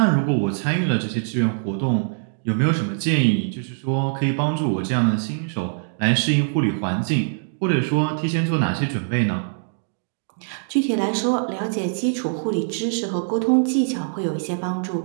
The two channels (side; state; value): left; silent; digital silence